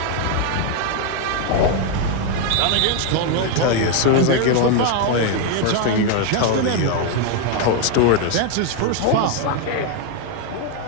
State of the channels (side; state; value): both; different; correlation 0.01